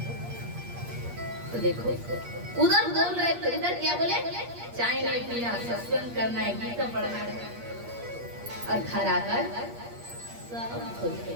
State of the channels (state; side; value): late; left; 8.5 ms